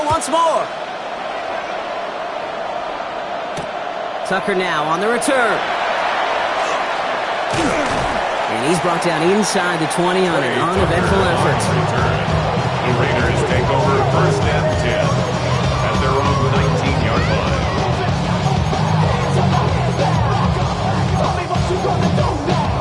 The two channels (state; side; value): identical; both; correlation 1.00